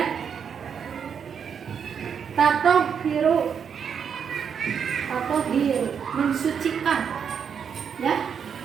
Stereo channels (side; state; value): left; quieter; 7.2 dB